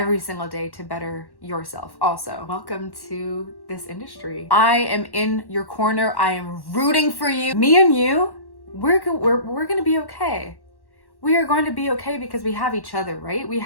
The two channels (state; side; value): late; right; 1.1 ms